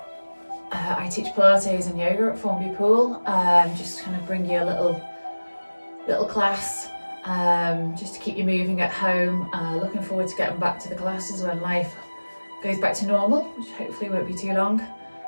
I teach Pilates and yoga at Formby Pool. Just kind of bring you a little class, just to keep you moving at home. Looking forward to getting back to the classes when life goes back to normal, which hopefully won't be too long.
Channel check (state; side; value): inverted; both; correlation -1.00